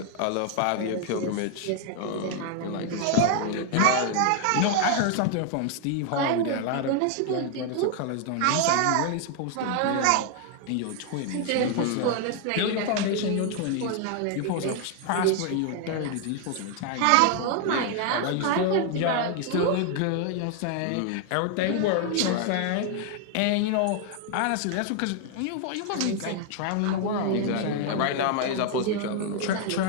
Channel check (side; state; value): both; different; correlation 0.00